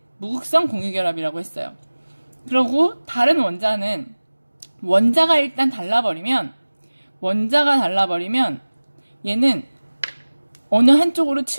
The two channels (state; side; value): inverted; both; correlation -1.00